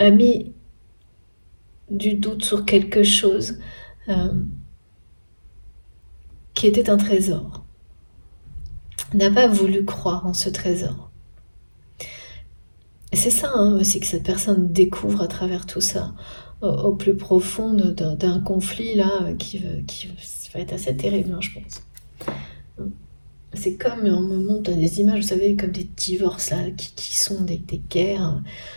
mis du doute sur quelque chose euh, qui était un trésor, n'a pas voulu croire en ce trésor. Et c'est ça, hein, aussi, que cette personne découvre à travers tout ça, au plus profond d'un conflit là, qui va être assez terrible, hein, je pense. C'est comme on me montre des images, vous savez, comme des divorces là, qui sont des guerres.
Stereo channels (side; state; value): both; inverted; correlation -1.00